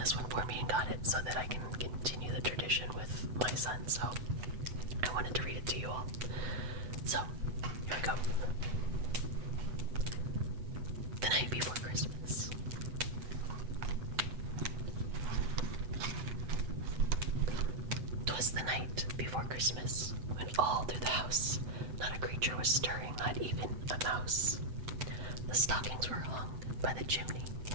one for me and got it so that I can continue the tradition with my son. So I wanted to read it to you all. So here we go. The night before Christmas. 'Twas the night before Christmas, when all through the house not a creature was stirring, not even a mouse. The stockings were hung by the chimney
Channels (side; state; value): left; late; 8.2 ms